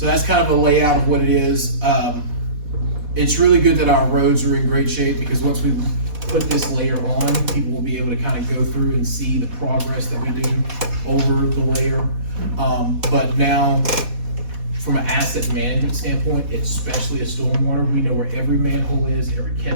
that's kind of a layout of what it is. It's really good that our roads are in great shape because once we put this layer on, people will be able to kind of go through and see the progress that we do over the layer. But now, from an asset management standpoint, especially a stormwater, we know where every manhole is, every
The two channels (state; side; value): late; left; 4.1 ms